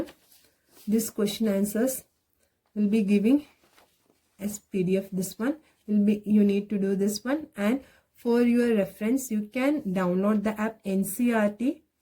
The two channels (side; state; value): both; identical; correlation 1.00